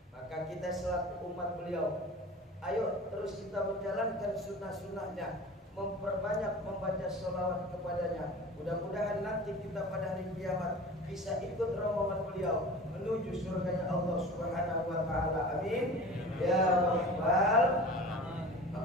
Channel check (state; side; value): normal; both; correlation 0.38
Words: Maka kita selaku umat beliau, ayo terus kita menjalankan sunnah-sunnahnya, memperbanyak membaca sholawat kepadanya. Mudah-mudahan nanti kita pada hari kiamat bisa ikut rombongan beliau menuju surganya Allah Subhanahu wa taala. Amin ya rabbal.